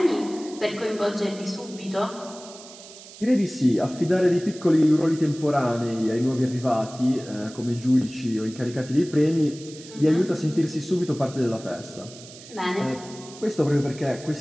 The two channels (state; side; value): noise; right; hiss, 18 dB below the sound